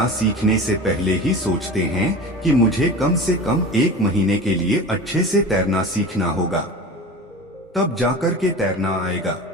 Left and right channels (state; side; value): normal; both; correlation 0.33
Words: सीखने से पहले ही सोचते हैं कि मुझे कम से कम 1 महीने के लिए अच्छे से तैरना सीखना होगा, तब जाकर के तैरना आएगा,